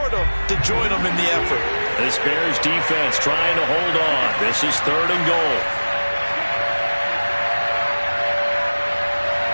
them to join them in the effort. This Bears defense trying to hold on. This is 3rd and goal.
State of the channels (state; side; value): inverted; both; correlation -1.00